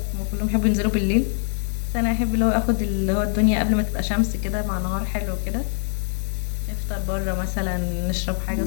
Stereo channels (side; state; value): right; silent; digital silence